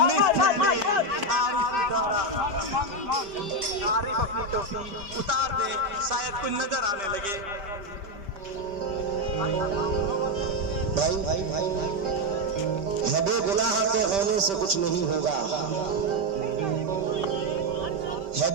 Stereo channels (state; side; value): late; left; 5.1 ms